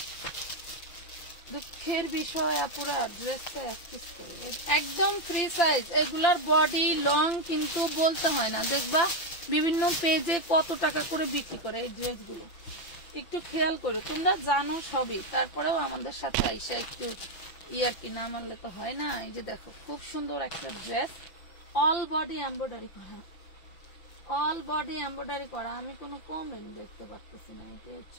দুঃখের বিষয় আপুরা, ড্রেসটা 1 পিস করে, একদম ফ্রি সাইজ। এগুলার বডি লং কিন্তু বলতে হয় না। দেখবা বিভিন্ন পেজে কত টাকা করে বিক্রি করে এই ড্রেসগুলো, একটু খেয়াল করে। তোমরা জানো সবই, তারপরেও আমাদের সাথে আইসা একটু ইয়ার কি না মানলে তো হয় না। এই যে দেখো, খুব সুন্দর একটা ড্রেস, অল বডি এমব্রয়ডারি করা, অল বডি এমব্রয়ডারি করা। আমি কোনো কমেন্ট দেখতে পাচ্ছি না, এটা হচ্ছে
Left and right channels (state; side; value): late; right; 5.8 ms